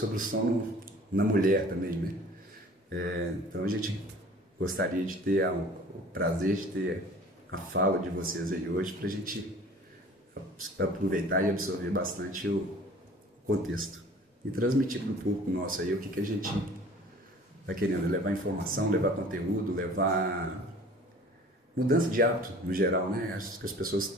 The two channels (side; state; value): both; normal; correlation 0.47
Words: o sono na mulher também, né? Então a gente gostaria de ter o prazer de ter a fala de vocês aí hoje para a gente aproveitar e absorver bastante o contexto e transmitir para o público nosso aí o que a gente está querendo, levar informação, levar conteúdo, levar mudança de hábito no geral, né? Acho que as pessoas